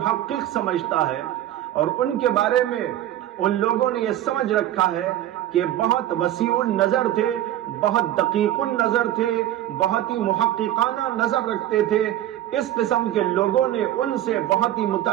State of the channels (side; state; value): left; quieter; 13.0 dB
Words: سمجھتا ہے، اور ان کے بارے میں ان لوگوں نے یہ سمجھ رکھا ہے کہ بہت وسیع النظر تھے، بہت دقیق النظر تھے، بہت ہی محققانہ نظر رکھتے تھے۔ اس قسم کے لوگوں نے ان سے بہت ہی